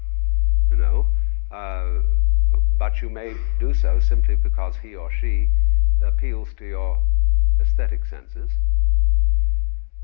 you know, but you may do so simply because he or she appeals to your aesthetic senses.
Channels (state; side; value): silent; right; digital silence